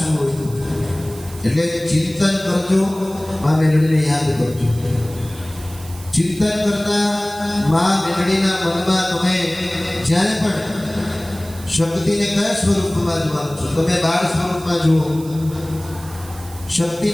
હોય એટલે ચિંતન કરજો, મા મેલડીને યાદ કરજો. ચિંતન કરતા મા મેલડીના મનમાં તમે જ્યારે પણ શક્તિને કયા સ્વરૂપમાં જોવાનું છો? તમે બાળ સ્વરૂપમાં જુઓ,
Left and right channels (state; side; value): noise; right; hiss, 19 dB below the sound